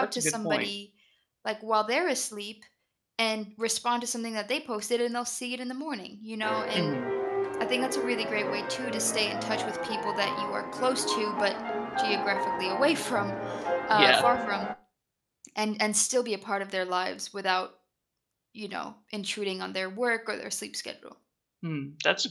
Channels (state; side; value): identical; both; correlation 1.00